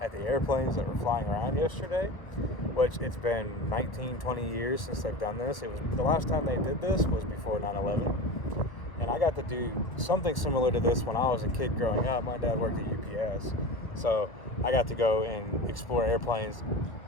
the airplanes that were flying around yesterday, which it's been 19-20 years since they've done this. It was the last time they did this was before 9/11, and I got to do something similar to this when I was a kid growing up. My dad worked at UPS, so I got to go and explore airplanes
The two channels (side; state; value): right; late; 1.2 ms